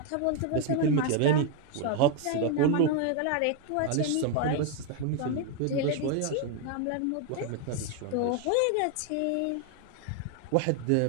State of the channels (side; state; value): both; different; correlation 0.01